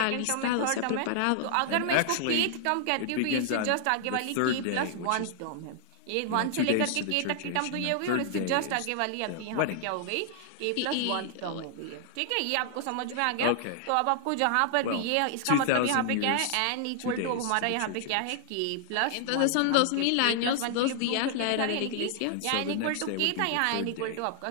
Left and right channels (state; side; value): different; both; correlation -0.01